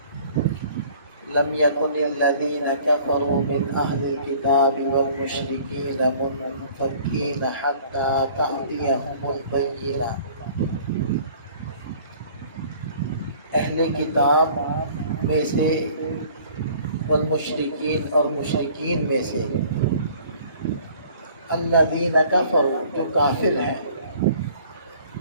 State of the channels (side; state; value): both; inverted; correlation -0.52